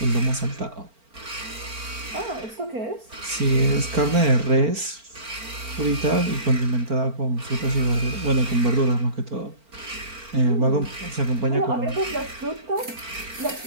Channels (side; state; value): left; late; 4.4 ms